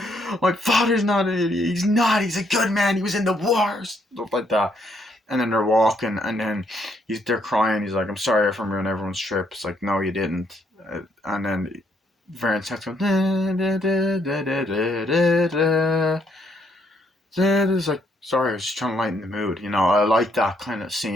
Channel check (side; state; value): both; normal; correlation 0.72